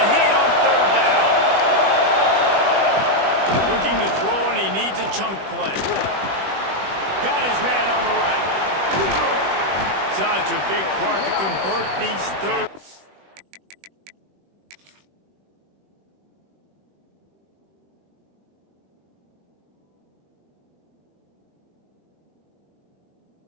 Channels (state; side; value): late; left; 21 ms